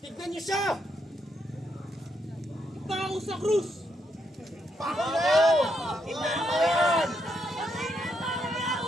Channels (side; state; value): both; normal; correlation 0.79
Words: niyo siya! Ipako sa krus! Ipako yan! Ipako yan!